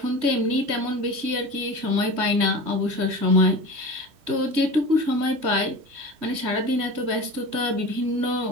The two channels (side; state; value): left; late; 3.1 ms